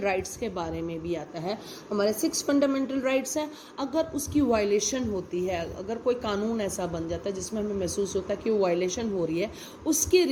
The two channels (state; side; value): identical; both; correlation 1.00